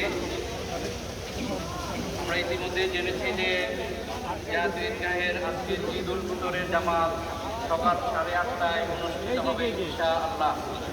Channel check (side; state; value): both; identical; correlation 1.00